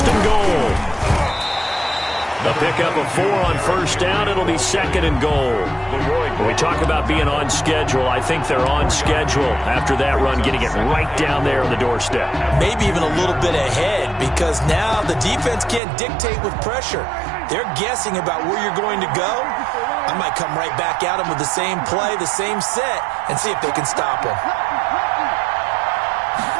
and goal. The pickup of 4 on 1st down. It'll be 2nd and goal. When we talk about being on schedule, I think they're on schedule after that run, getting it right down there on the doorstep. Maybe even a little bit ahead, because now the defense can't dictate with pressure. They're guessing about where you're going to go. I might come right back at them with the same play, the same set, and see if they can stop them.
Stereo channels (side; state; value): left; drops out; at 15.8 s